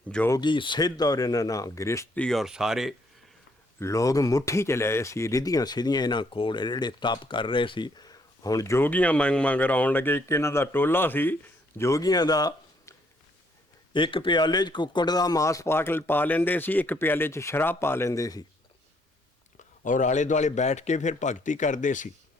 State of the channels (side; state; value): both; normal; correlation 0.69